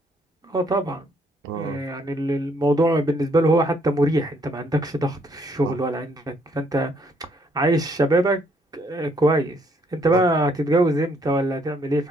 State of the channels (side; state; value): both; normal; correlation 0.69